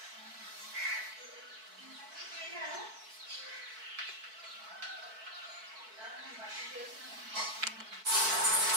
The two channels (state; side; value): late; left; 4.6 ms